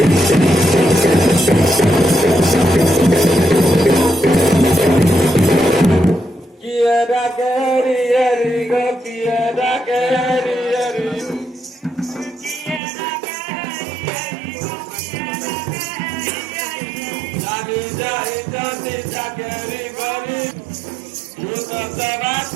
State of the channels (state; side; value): drops out; left; at 12.8 s